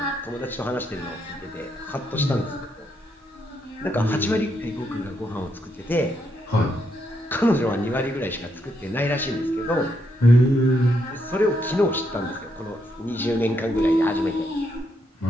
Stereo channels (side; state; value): both; normal; correlation 0.78